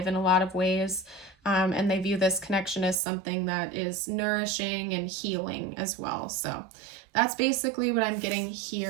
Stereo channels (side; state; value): left; drops out; at 3.0 s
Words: in a lot of ways, and they view this connection as something that is nourishing and healing as well. So that's basically what I'm getting